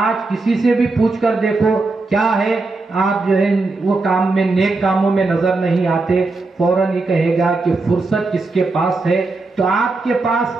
کسی سے بھی پوچھ کر دیکھو کیا ہے، آپ جو ہے وہ کام میں، نیک کاموں میں نظر نہیں آتے، فوراً ہی کہے گا کہ فرصت کس کے پاس ہے۔ تو آپ کے پاس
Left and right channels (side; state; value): left; quieter; 3.5 dB